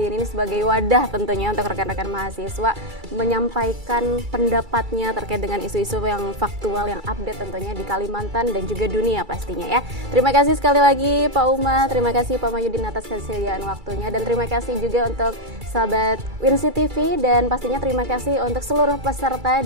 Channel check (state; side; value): late; left; 2.3 ms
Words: Ini sebagai wadah tentunya untuk rekan-rekan mahasiswa menyampaikan pendapatnya terkait dengan isu-isu yang faktual, yang update tentunya di Kalimantan dan juga dunia pastinya ya. Terima kasih sekali lagi Pak Umar, terima kasih Pak Mahyudin atas kesediaan waktunya, dan terima kasih juga untuk sahabat Winsi TV, dan pastinya terima kasih untuk seluruh peserta